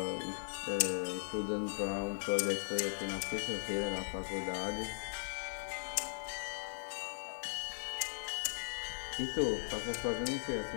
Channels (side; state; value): right; silent; digital silence